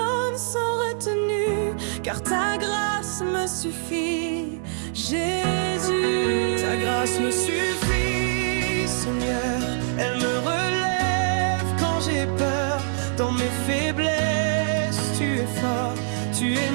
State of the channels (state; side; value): silent; left; 55 dB below the other